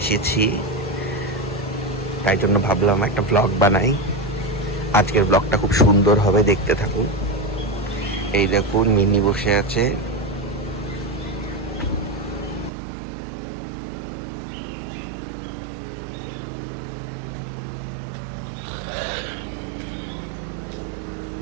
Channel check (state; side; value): drops out; left; at 12.7 s